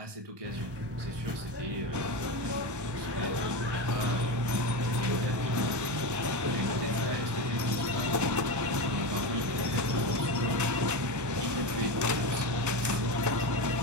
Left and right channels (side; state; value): left; late; 1.2 ms